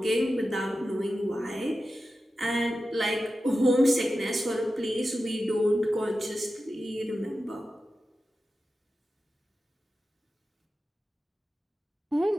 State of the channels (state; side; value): normal; both; correlation 0.93